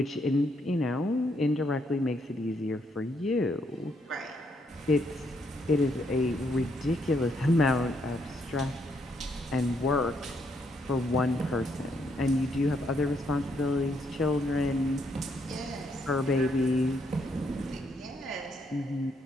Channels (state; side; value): normal; both; correlation 0.74